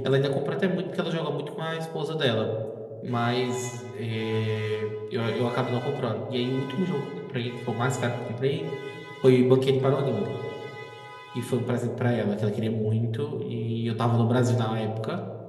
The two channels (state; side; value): identical; both; correlation 1.00